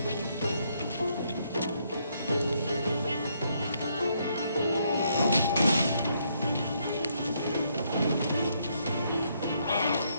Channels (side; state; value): both; inverted; correlation -0.73